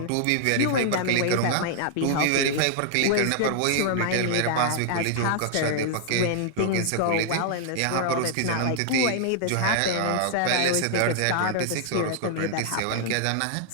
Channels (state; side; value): different; both; correlation -0.01